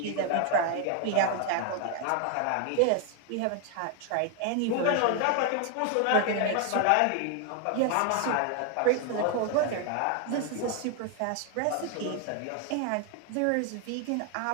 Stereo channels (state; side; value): different; both; correlation 0.01